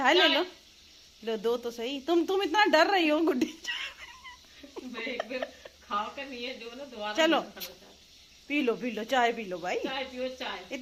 ले लो। लो दो तो सही। तुम इतना डर रही हो गुड्डी। एक बार खाओ कर नहीं है जो ना दोबारा। चलो पी लो चाय पी लो भाई। चाय पियो चाय।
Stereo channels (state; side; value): identical; both; correlation 1.00